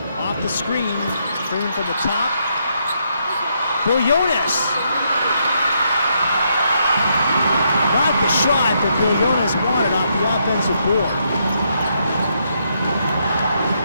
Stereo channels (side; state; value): both; inverted; correlation -0.77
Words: Off the screen, Freeman from the top. Willones. Not the shot that Willones wanted off the offensive board.